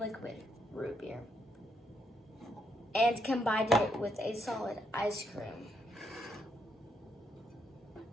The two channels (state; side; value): normal; both; correlation 0.77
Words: root beer and combine it with a solid ice cream.